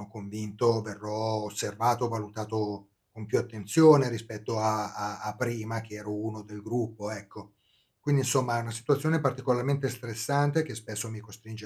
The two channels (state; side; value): identical; both; correlation 1.00